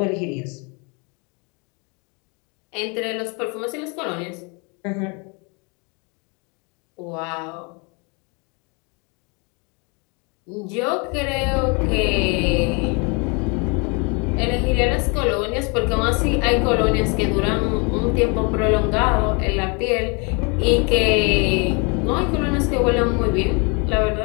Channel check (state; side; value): quieter; right; 32.3 dB